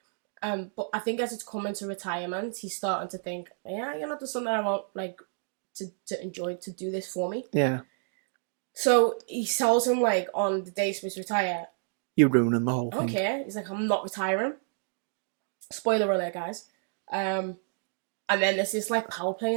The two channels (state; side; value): silent; left; 58 dB below the other